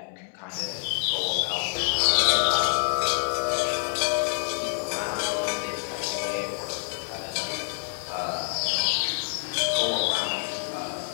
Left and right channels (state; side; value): silent; right; 60 dB below the other